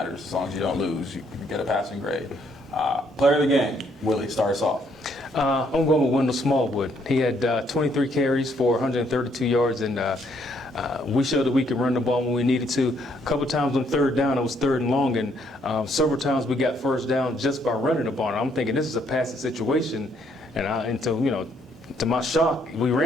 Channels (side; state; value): both; normal; correlation 0.69